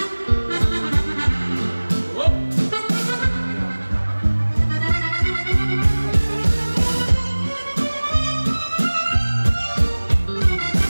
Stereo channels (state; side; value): inverted; both; correlation -1.00